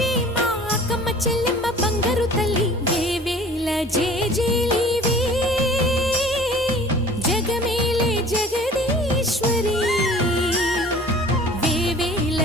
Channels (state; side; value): normal; both; correlation 0.47